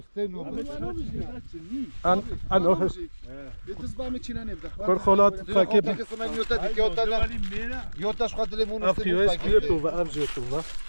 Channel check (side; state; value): both; inverted; correlation -1.00